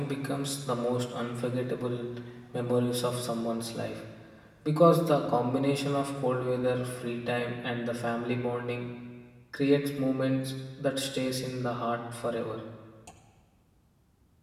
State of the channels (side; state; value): both; identical; correlation 1.00